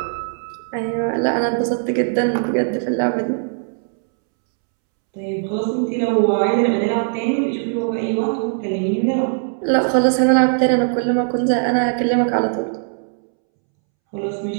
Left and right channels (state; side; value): silent; left; 66 dB below the other